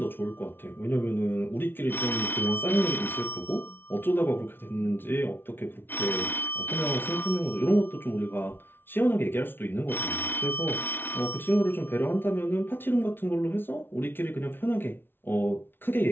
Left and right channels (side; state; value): right; late; 0.10 ms